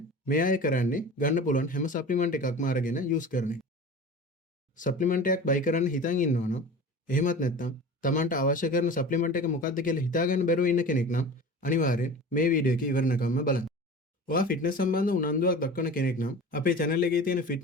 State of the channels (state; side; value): normal; both; correlation 0.36